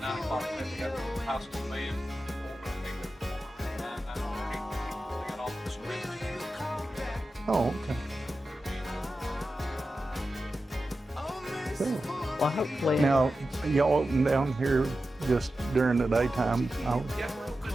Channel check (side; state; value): both; normal; correlation 0.92